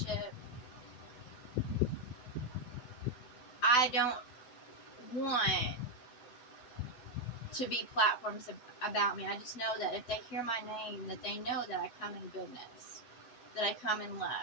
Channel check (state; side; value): late; right; 8.0 ms